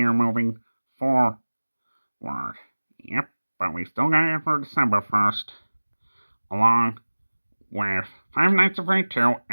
moving forward. Yep, but we still got it for December 1st. Along with Five Nights at Freddy's 2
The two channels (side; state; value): both; inverted; correlation -1.00